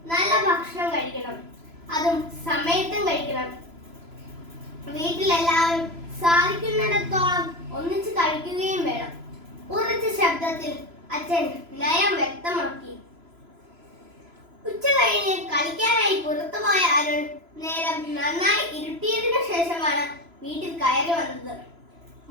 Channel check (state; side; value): late; left; 3.0 ms